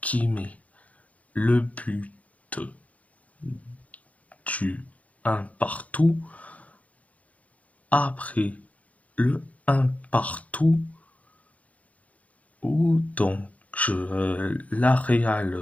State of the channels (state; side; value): late; right; 0.068 ms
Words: qui met le but du 1 partout. Après le 1 partout, où donc la